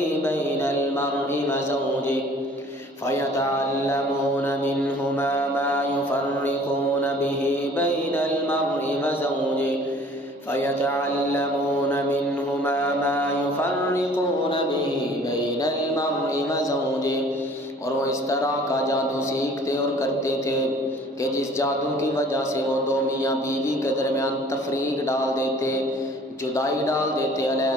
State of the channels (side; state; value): both; normal; correlation 0.52